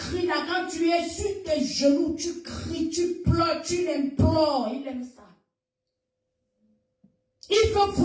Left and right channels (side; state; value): both; identical; correlation 1.00